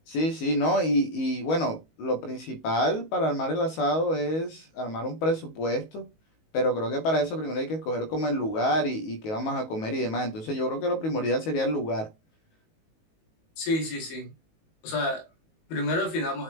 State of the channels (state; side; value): late; right; 19 ms